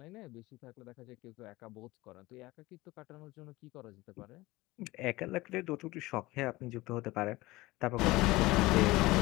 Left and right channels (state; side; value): quieter; right; 20.1 dB